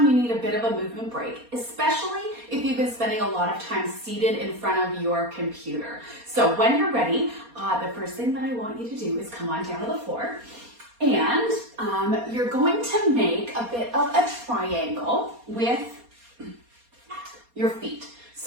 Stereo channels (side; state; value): left; late; 4.2 ms